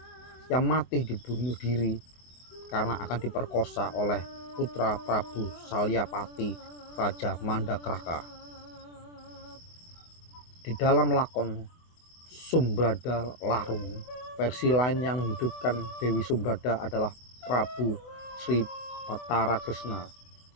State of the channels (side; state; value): right; late; 24 ms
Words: yang mati dibunuh diri karena akan diperkosa oleh putra Prabu Salyapati Raja Mandakraka. Di dalam lakon Sumbrada Larung, versi lain yang menghidupkan Dewi Sumbrada adalah Prabu Sri Batara Krishna